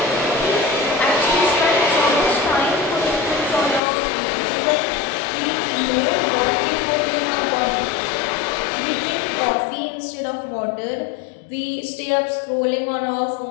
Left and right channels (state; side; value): drops out; right; at 3.8 s